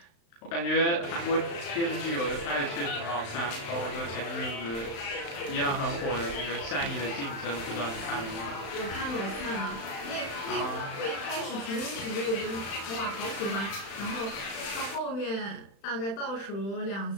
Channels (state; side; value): late; right; 35 ms